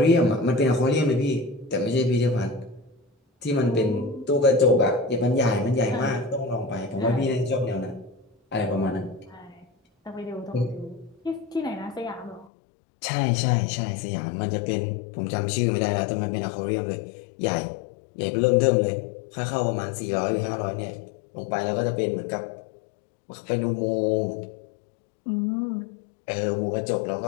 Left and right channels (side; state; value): right; drops out; at 12.5 s